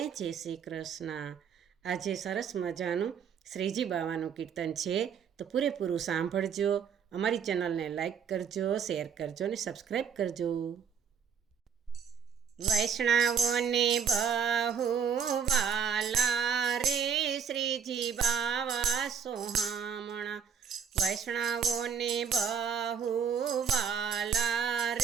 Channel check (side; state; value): left; quieter; 7.0 dB